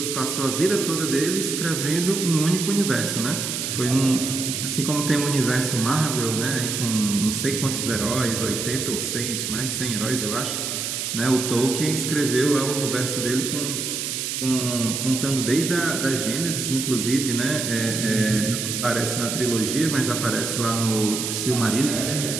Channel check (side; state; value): right; noise; hiss, 3 dB below the sound